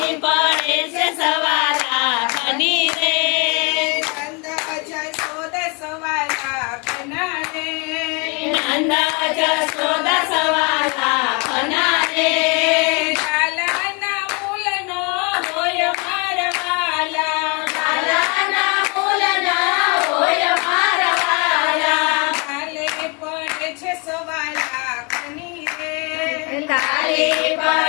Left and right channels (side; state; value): right; quieter; 31.8 dB